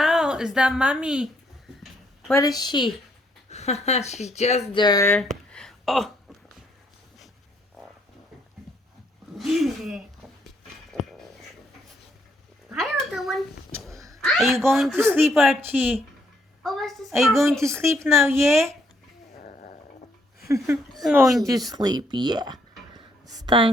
Is that mommy? Where is she? She's just there. Oh. Hi, little one. Are you going to sleep, Archie? Oh, what's this? Are you going to sleep now, yeah? Going to sleep, yeah. It's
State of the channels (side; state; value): both; normal; correlation 0.71